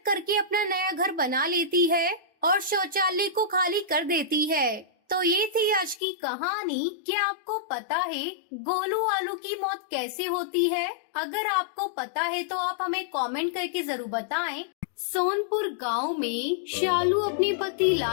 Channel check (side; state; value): right; drops out; at 6.0 s